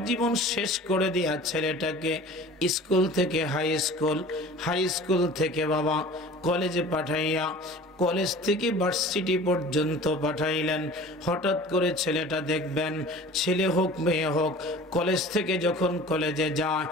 জীবন শেষ করে দিয়া ছেলেটাকে স্কুল থেকে হাই স্কুল, হাই স্কুল থেকে বাবা কলেজে পাঠাইয়া, কলেজ থেকে ভার্সিটি পর্যন্ত পাঠাইলেন। হঠাৎ করে ছেলেটা দেখবেন, ছেলে হোক মেয়ে হোক, কলেজ থেকে যখন কলেজে যায়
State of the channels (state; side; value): normal; both; correlation 0.42